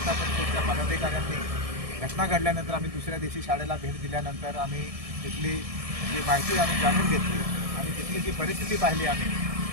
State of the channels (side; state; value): left; late; 1.7 ms